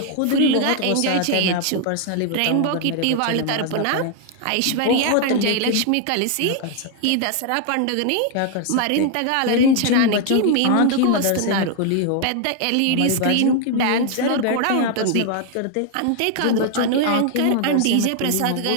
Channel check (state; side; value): different; both; correlation 0.00